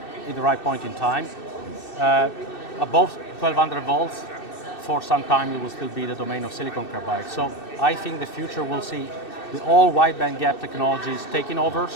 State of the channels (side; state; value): right; late; 2.6 ms